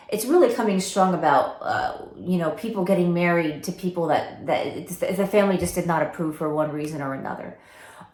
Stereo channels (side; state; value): both; identical; correlation 1.00